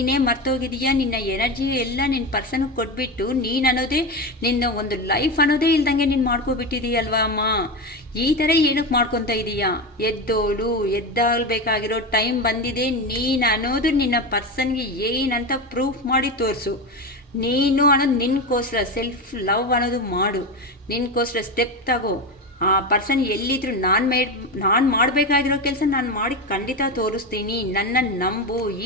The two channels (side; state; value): both; normal; correlation 0.19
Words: ಮರ್ತೋಗಿದೆಯಾ, ನಿನ್ನ ಎನರ್ಜಿ ಎಲ್ಲ ನಿನ್ನ ಪರ್ಸನ್ಗೆ ಕೊಟ್ಬಿಟ್ಟು ನೀನು ಅನ್ನೋದೇ ನಿನ್ನ ಒಂದು ಲೈಫ್ ಅನ್ನೋದೇ ಇಲ್ದಂಗೆ ನೀನು ಮಾಡ್ಕೊಬಿಟ್ಟಿದೀಯಲ್ವಾ ಅಮ್ಮ. ಈ ಥರ ಏನಕ್ಕೆ ಮಾಡ್ಕೊತಾ ಇದೀಯಾ? ಎದ್ದಾಗಬೇಕಾಗಿರೋ ಟೈಮ್ ಬಂದಿದೆ. ನೀನು ಅನ್ನೋದು ನಿನ್ನ ಪರ್ಸನ್ಗೆ ಏನಂತ ಪ್ರೂಫ್ ಮಾಡಿ ತೋರಿಸು. ನೀನು ಅನ್ನೋದು ನಿನ್ಗೋಸ್ಕರ ಸೆಲ್ಫ್ ಲವ್ ಅನ್ನೋದು ಮಾಡು, ನಿನ್ಗೋಸ್ಕರ ಸ್ಟೆಪ್ ತಗೋ. ಆ ಪರ್ಸನ್ ಎಲ್ಲಿದ್ರು ನಾನು ಮಾಡಬೇಕಾಗಿರೋ ಕೆಲಸ ನಾನು ಮಾಡಿ ಖಂಡಿತ ತೋರಿಸ್ತೀನಿ, ನನ್ನ ನಂಬು.